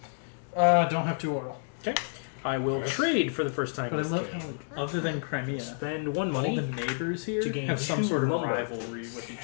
Don't have 2 oil. Okay. I will trade for the first time. But I this love game. how, like, other than Crimea, Spend 1 all money. the neighbors here to gain have some 2 sort of lumber. rivalry with each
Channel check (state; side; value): silent; right; digital silence